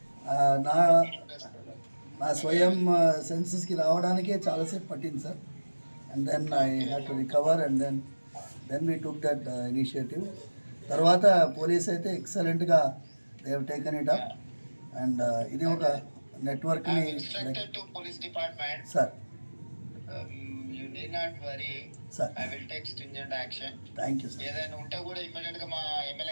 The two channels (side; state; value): both; inverted; correlation -1.00